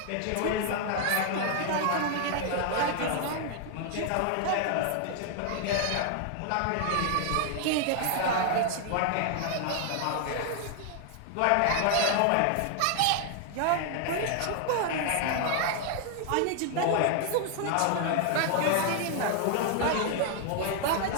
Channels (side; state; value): both; different; correlation 0.00